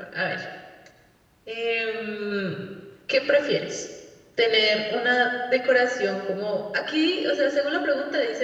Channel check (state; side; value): identical; both; correlation 1.00